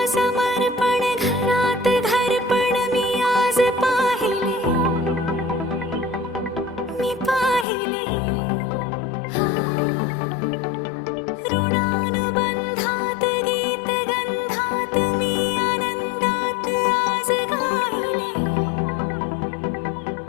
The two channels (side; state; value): right; drops out; at 7.7 s